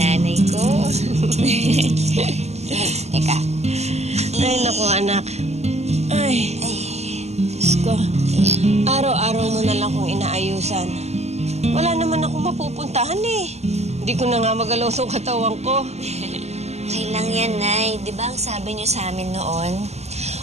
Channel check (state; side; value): late; left; 0.32 ms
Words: ko. Teka. Ay, naku, anak. Ay, Diyos ko. Araw-araw mo na lang kong inaayusan. Wala naman akong mapupuntahan eh. Hindi ko na nga magalaw sa katawan ko. Okay lang yan, Nay. Di ba ang sabi niyo sa amin noon?